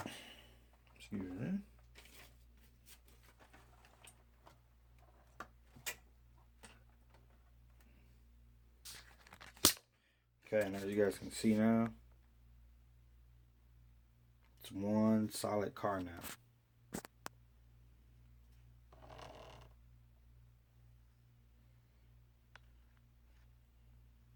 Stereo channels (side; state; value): both; identical; correlation 1.00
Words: Excuse me. Okay, and as you guys can see now, it's one solid car now.